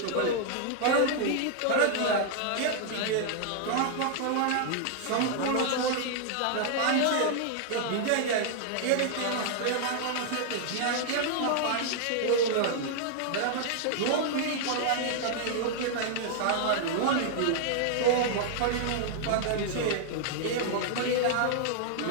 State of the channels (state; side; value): different; both; correlation -0.01